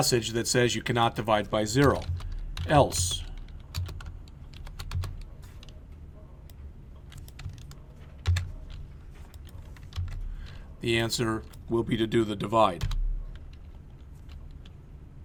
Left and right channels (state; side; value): identical; both; correlation 1.00